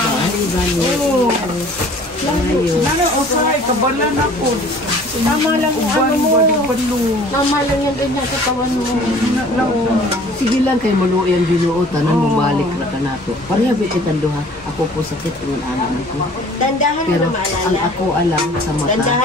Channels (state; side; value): normal; both; correlation 0.50